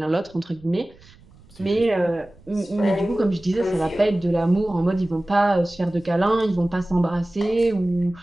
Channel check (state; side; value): noise; right; rumble, 26 dB below the sound